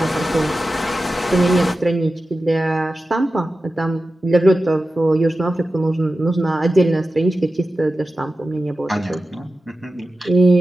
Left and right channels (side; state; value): both; normal; correlation 0.93